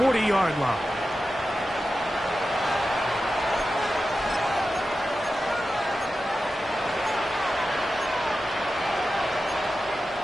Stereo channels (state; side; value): normal; both; correlation 0.92